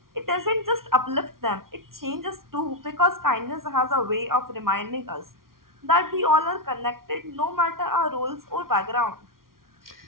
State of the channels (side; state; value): left; late; 0.93 ms